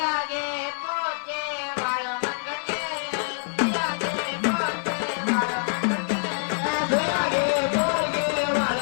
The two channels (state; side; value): silent; right; 61 dB below the other